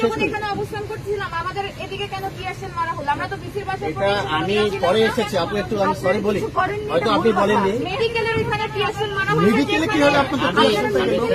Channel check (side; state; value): both; identical; correlation 1.00